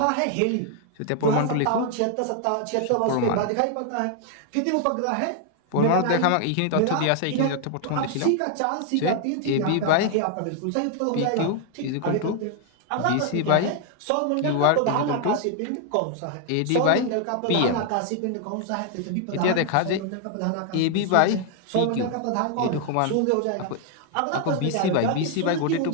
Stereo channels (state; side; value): different; both; correlation 0.00